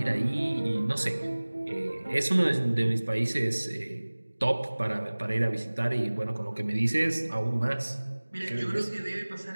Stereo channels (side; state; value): both; inverted; correlation -1.00